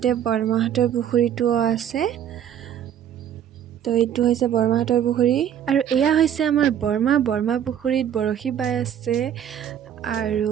বৰমাহতৰ পুখুৰীটো আছে তো এইটো হৈছে বৰমাহতৰ পুখুৰী আৰু এয়া হৈছে আমাৰ বৰমা পুখুৰীত বৰশী বাই আছে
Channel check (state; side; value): quieter; left; 9.7 dB